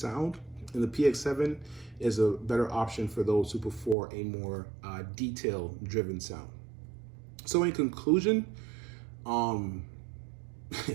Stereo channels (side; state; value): left; drops out; at 4.0 s